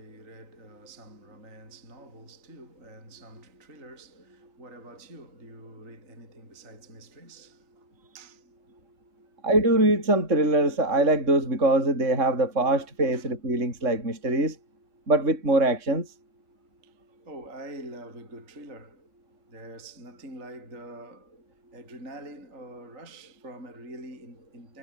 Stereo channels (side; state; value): left; late; 3.6 ms